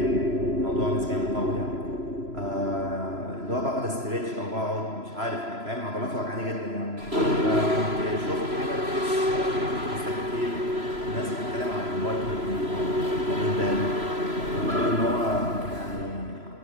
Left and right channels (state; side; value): late; left; 3.0 ms